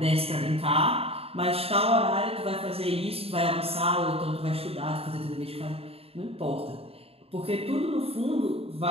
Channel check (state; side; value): late; left; 0.28 ms